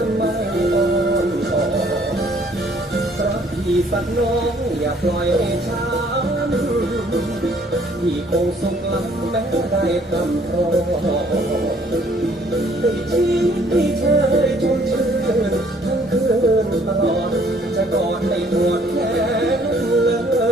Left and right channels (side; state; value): both; normal; correlation 0.61